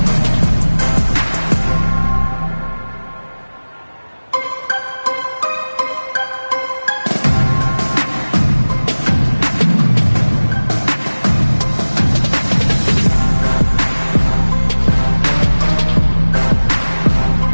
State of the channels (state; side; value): inverted; both; correlation -1.00